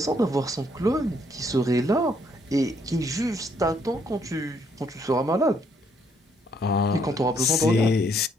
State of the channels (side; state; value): both; normal; correlation 0.70